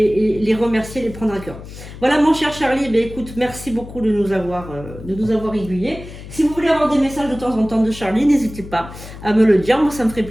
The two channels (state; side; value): noise; left; hum, 14 dB below the sound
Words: remercier, les prendre à cœur. Voilà mon cher Charlie, écoute, merci beaucoup de nous avoir aiguillés. Si vous voulez avoir des messages de temps en temps de Charlie, n'hésitez pas à me le dire. Moi, ça me ferait